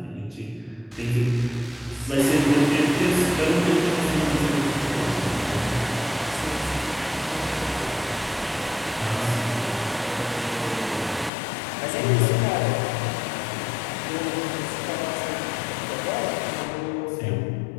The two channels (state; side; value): drops out; right; at 11.3 s